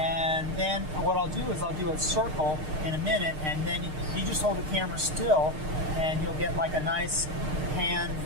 then what I'll do is I'll do a circle in a minute, and then you just hold the camera still and you'll get like a nice hand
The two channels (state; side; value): late; left; 6.5 ms